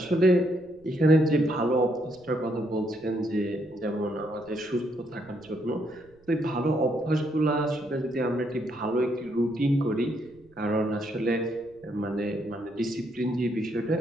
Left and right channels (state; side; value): noise; right; rumble, 29 dB below the sound